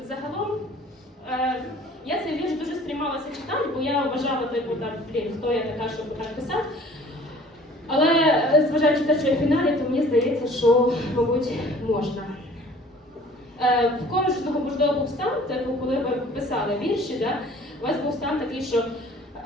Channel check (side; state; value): both; normal; correlation 0.51